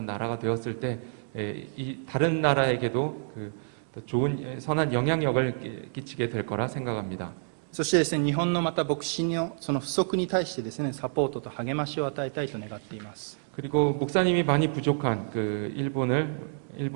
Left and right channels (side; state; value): left; silent; digital silence